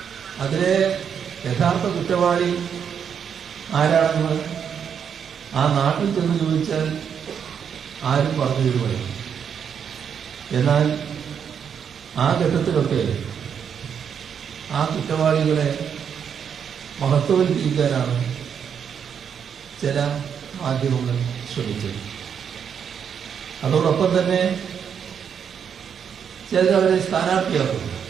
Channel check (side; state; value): left; quieter; 7.6 dB